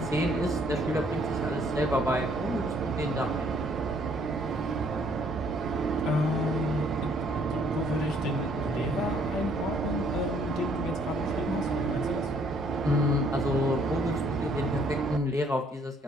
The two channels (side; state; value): both; normal; correlation 0.64